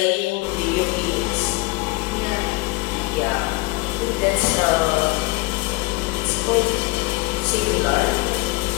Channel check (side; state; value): right; quieter; 22.5 dB